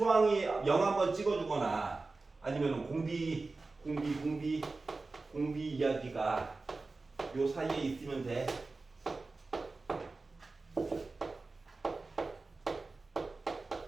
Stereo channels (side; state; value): left; quieter; 3.6 dB